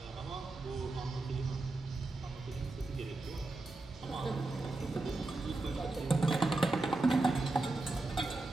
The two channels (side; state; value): left; quieter; 3.1 dB